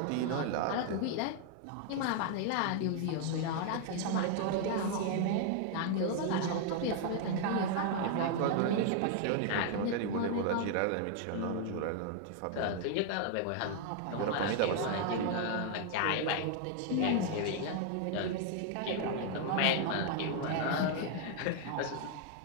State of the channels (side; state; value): both; different; correlation 0.00